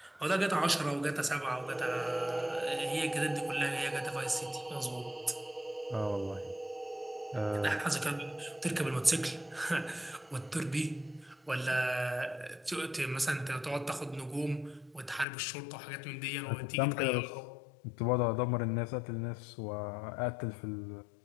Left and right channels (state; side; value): drops out; right; at 15.2 s